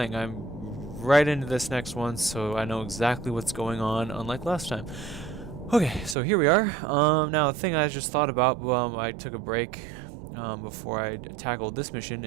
I'm right into this next one, so I know exactly what's going on, unlike last time. Okay, so here we are. Now the thing I just thought about, I took a break before I tackled this mission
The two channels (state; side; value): drops out; left; at 6.2 s